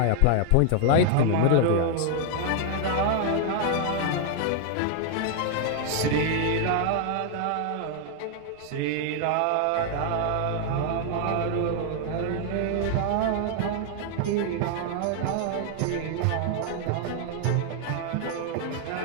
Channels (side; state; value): both; different; correlation 0.00